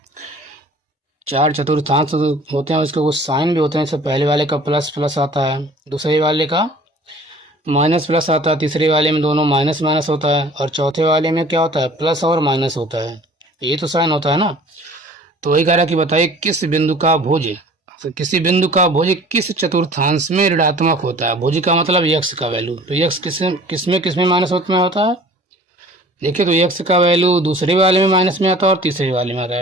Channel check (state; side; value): normal; both; correlation 0.48